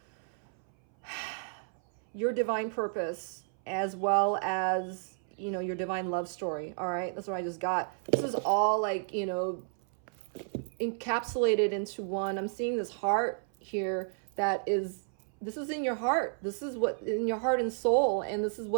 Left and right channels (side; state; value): left; silent; 57 dB below the other